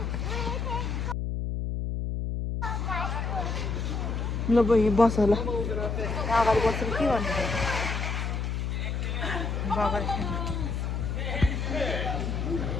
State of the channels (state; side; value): noise; left; hum, 1 dB below the sound